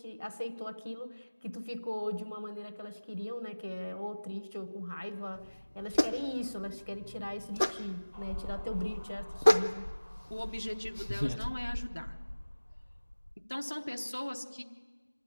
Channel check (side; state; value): both; inverted; correlation -1.00